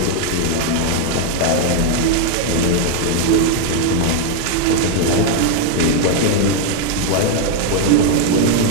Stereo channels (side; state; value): both; different; correlation 0.01